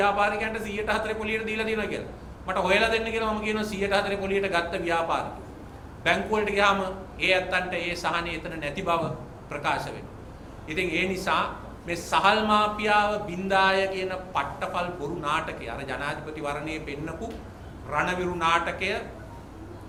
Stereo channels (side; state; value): both; identical; correlation 1.00